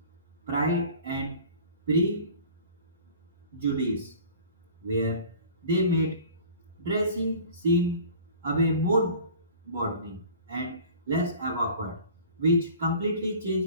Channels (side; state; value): both; inverted; correlation -0.44